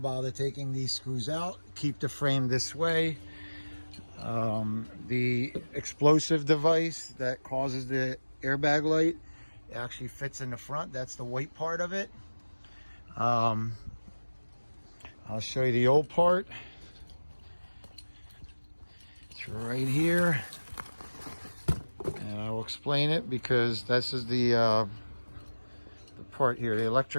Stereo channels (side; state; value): both; inverted; correlation -1.00